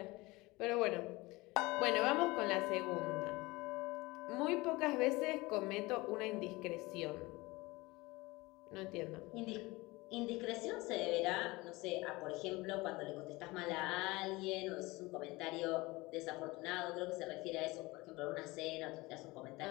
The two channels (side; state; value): right; quieter; 22.1 dB